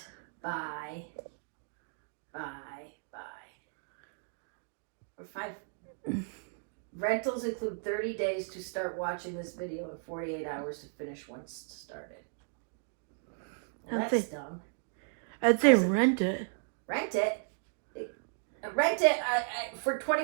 buy. Or 5. Rentals include 30 days to start watching this video and 48 hours to finish once started. Well, that's dumb. I'd say rent it. Rent it? Rent it for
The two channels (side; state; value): left; silent; digital silence